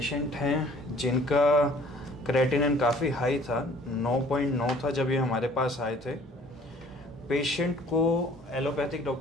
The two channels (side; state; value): both; normal; correlation 0.54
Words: हैं जिनका क्रेटिनिन काफ़ी हाई था, 9.9 था जब ये हमारे पास आए थे। पेशेंट को एलोपैथिक